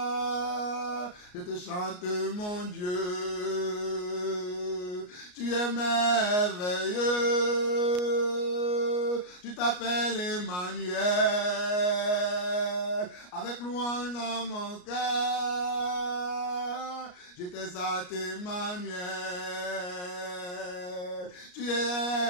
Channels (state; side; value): late; right; 33 ms